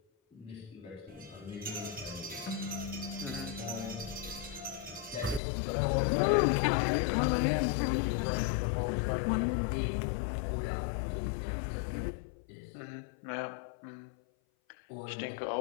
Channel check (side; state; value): right; drops out; at 5.4 s